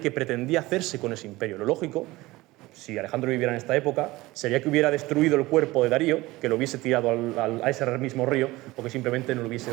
pretendía hacerse con ese imperio. Lo lógico, si Alejandro viviera en esta época, sería que hubiera destruido el cuerpo de Darío, que lo hubiese tirado a ese mismo río, o que simplemente no le hubiese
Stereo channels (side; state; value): left; quieter; 19.6 dB